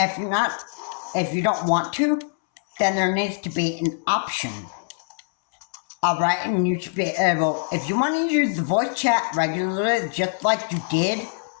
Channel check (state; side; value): silent; right; 63 dB below the other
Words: you don't want to, then there needs to be an option. Alright, and you should be able, if you want to use the voice chat regularly, just like you did